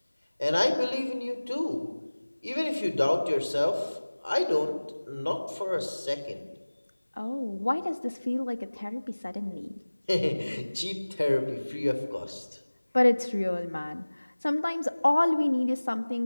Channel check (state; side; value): inverted; both; correlation -1.00